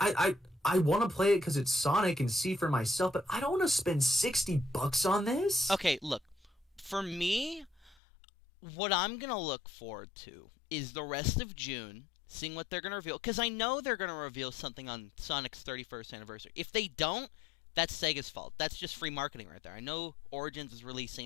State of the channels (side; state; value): right; drops out; at 8.0 s